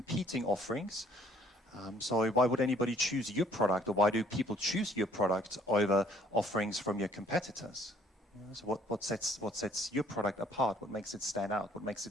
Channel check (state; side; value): normal; both; correlation 0.61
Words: offerings. So why would anybody choose your product, or why do people choose your product over offerings from your competitors? So what sets your product apart? What makes it stand out? What makes